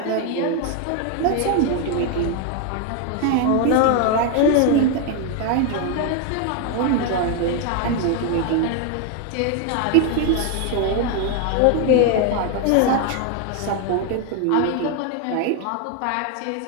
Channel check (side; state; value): both; different; correlation 0.01